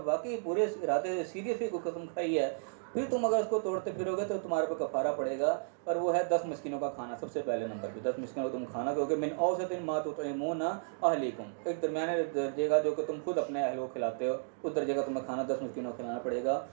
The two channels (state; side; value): silent; left; digital silence